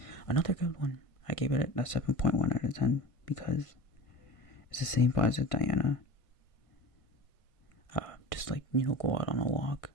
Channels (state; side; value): late; right; 1.5 ms